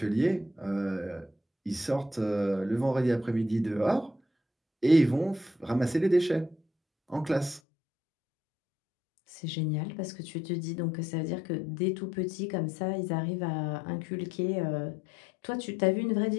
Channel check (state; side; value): drops out; right; at 7.6 s